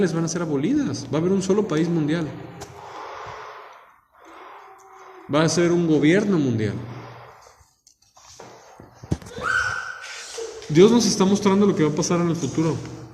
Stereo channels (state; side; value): identical; both; correlation 1.00